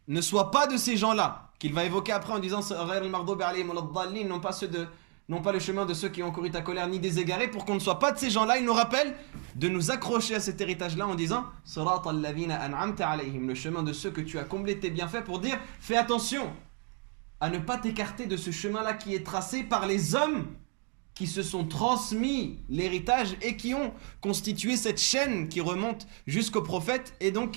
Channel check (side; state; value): left; quieter; 35.3 dB